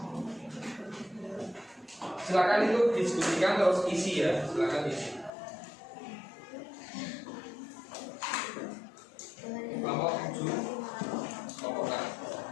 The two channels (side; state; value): right; drops out; at 5.3 s